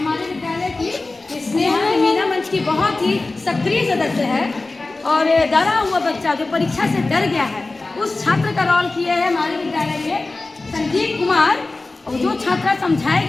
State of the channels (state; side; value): quieter; right; 3.3 dB